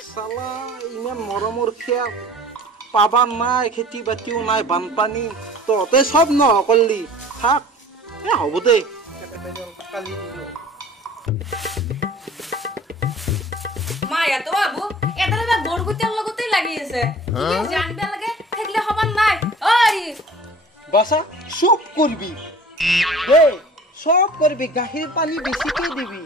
চালা ইমান মৰমৰ খেল পাবা নাই খেতি বাতিও নাই বানপানী তহঁতে চব নহকলি থাক হ'ব দে কালি দিলো মায়া তো বাবু এটা না গড়গুতের লগতেই লাগি আছে কি জানবে লাগে থাকলে খবর নাই ওই বাসা সব করবি হে সব করবি গাখীৰ পানী বেছিকে দিবি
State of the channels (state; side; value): normal; both; correlation 0.45